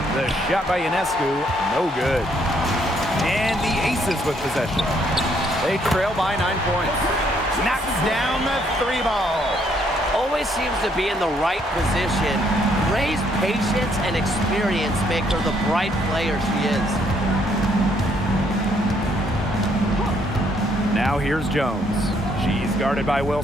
The shot by Ionescu, no good. And the Aces with possession. They trail by 9 points. Knocks down the 3 ball. Always seems to be in the right position. Gray's patience and experience make her the bright player she is. Now here's Jones. She's guarded by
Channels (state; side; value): normal; both; correlation 0.69